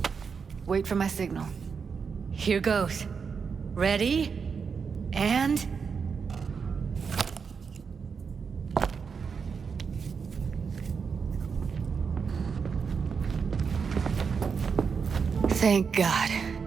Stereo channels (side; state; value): left; quieter; 5.9 dB